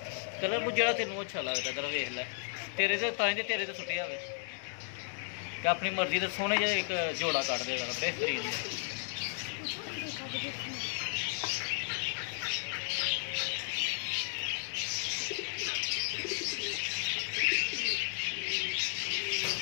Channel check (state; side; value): silent; right; digital silence